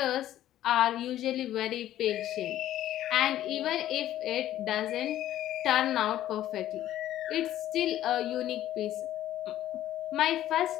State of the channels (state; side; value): quieter; right; 12.9 dB